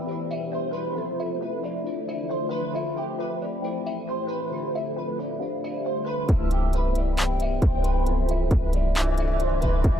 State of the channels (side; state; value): both; normal; correlation 0.79